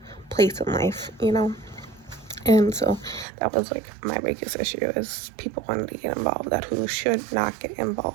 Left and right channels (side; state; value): left; drops out; at 3.2 s